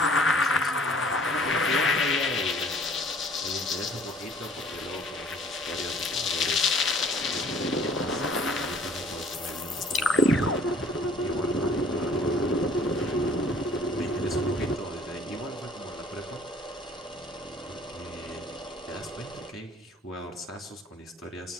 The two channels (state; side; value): normal; both; correlation 0.53